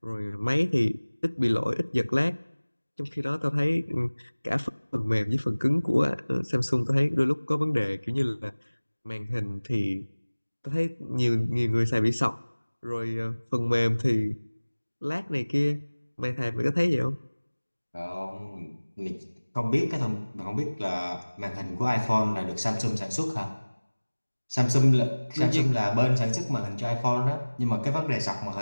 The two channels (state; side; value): inverted; both; correlation -1.00